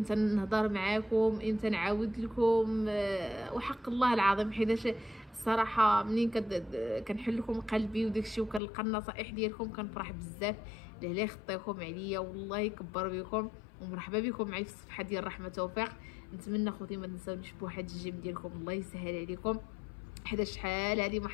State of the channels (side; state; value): right; drops out; at 8.6 s